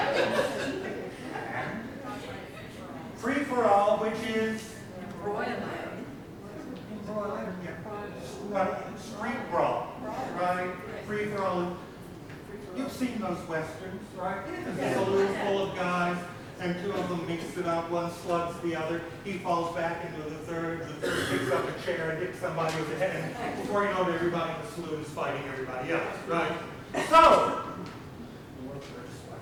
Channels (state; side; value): identical; both; correlation 1.00